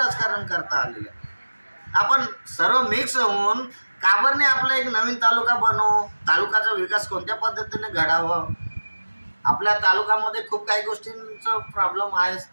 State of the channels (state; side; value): inverted; both; correlation -1.00